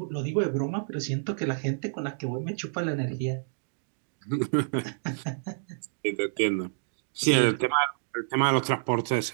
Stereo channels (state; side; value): silent; left; digital silence